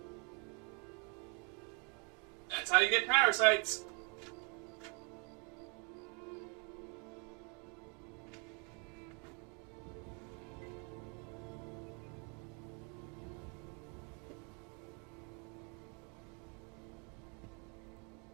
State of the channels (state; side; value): quieter; left; 34.7 dB